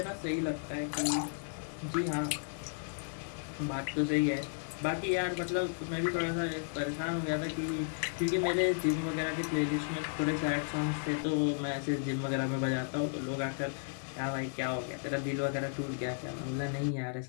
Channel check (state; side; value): silent; right; digital silence